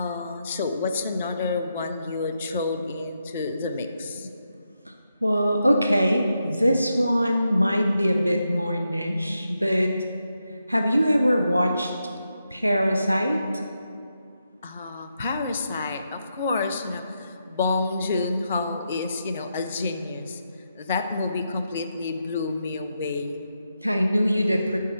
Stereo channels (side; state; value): both; inverted; correlation -0.84